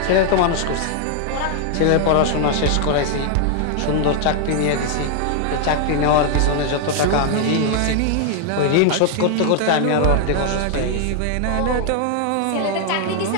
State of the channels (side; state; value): both; different; correlation 0.00